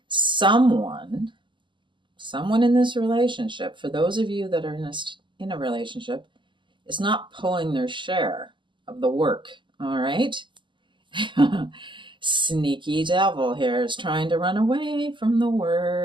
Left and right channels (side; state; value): left; late; 0.24 ms